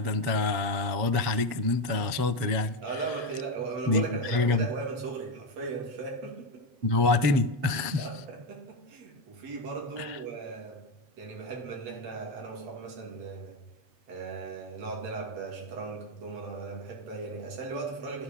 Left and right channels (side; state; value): left; late; 7.3 ms